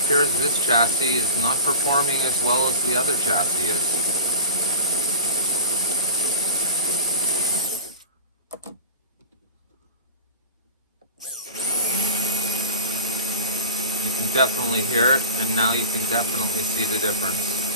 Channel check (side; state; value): both; inverted; correlation -0.31